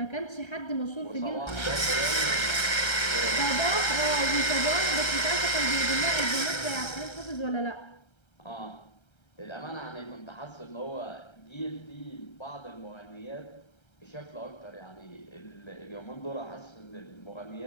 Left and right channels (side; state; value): right; late; 1.3 ms